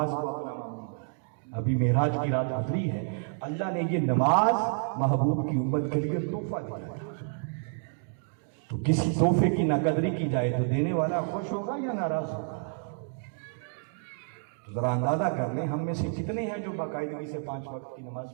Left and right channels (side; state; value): left; silent; 58 dB below the other